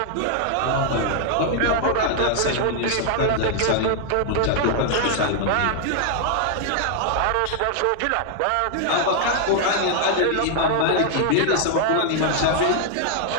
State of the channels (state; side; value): different; both; correlation 0.00